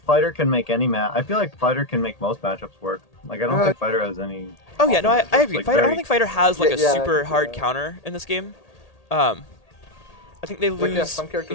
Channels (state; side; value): late; right; 1.8 ms